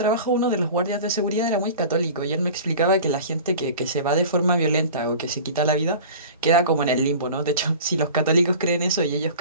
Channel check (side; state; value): both; inverted; correlation -0.39